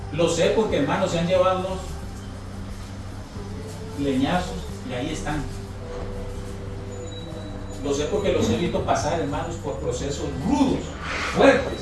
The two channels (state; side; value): identical; both; correlation 1.00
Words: Lo sé porque, hermanos, se han llevado unos leñazos Y ahí están. Lo sé porque los he visto pasar, hermanos, por procesos rudos,